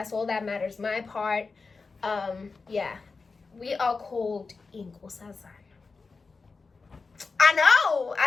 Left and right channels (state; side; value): quieter; right; 4.4 dB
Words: all that matters. My part. Yeah. We are called Inkosazana.